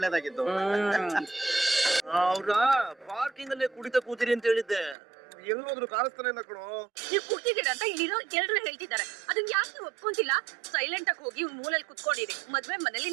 ಅವ್ರ ಪಾರ್ಕಿಂಗ್ ಅಲ್ಲೇ ಕುಡಿತ ಕೂತಿರಿ ಅಂತ ಹೇಳಿದ್ದೆ. ಎಲ್ಲೋದ್ರು ಕಾಣಿಸ್ತಾನೆ ಇಲ್ಲ ಕಣೋ. ನೀವು ಕುಡ್ತಿದ್ದೀರಾ ಅಂತ ಇಲ್ಲಿರೋ ಎಲ್ರು ಹೇಳ್ತಿದ್ದಾರೆ. ಅದನ್ನ ಯಾಕೆ ನೀವು ಒಪ್ಕೊಂತಿಲ್ಲ? ಸೈಲೆಂಟ್ ಆಗಿ ಹೋಗಿ ಮೂಲೆಯಲ್ಲಿ ಕುತ್ಕೊಂಡಿರಿ. ಮದ್ವೆ ಮನೇಲಿ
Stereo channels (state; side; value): drops out; left; at 5.0 s